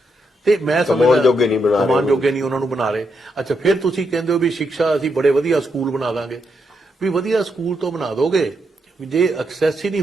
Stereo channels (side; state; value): both; normal; correlation 0.81